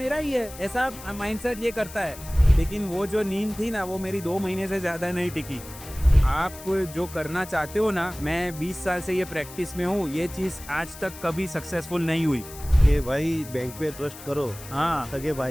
ही है, ऐसा माइंडसेट ये करता है। लेकिन वो जो नींद थी ना वो मेरी 2 महीने से ज़्यादा नहीं टिकी। आप जो करना चाहते हो ना, मैं 20 साल से ये प्रैक्टिस में हूँ, ये चीज़ आज तक कभी सक्सेसफुल नहीं हुई। कि भाई बैंक पे ट्रस्ट करो, हाँ, सगे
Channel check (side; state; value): left; noise; hiss, 16 dB below the sound